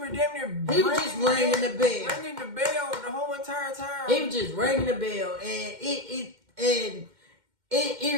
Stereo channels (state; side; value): late; left; 2.1 ms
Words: there damn near he was just ringing the bell. Ringing the bell the whole entire time. He was just ringing the bell and it